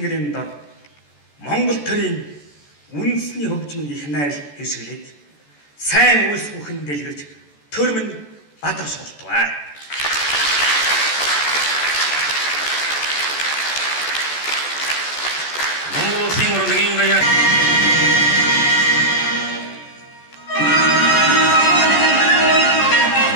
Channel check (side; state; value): right; late; 14 ms